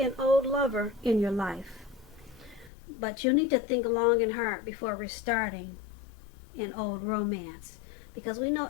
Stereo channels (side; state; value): right; drops out; at 2.7 s